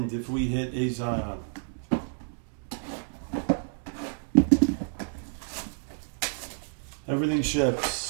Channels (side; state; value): left; silent; digital silence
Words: if we hit a Zion. Everything ships.